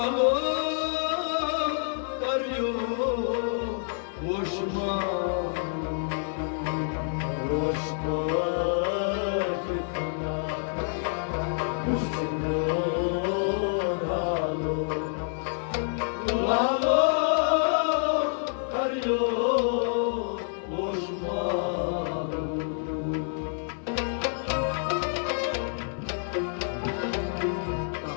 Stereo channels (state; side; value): silent; right; 59 dB below the other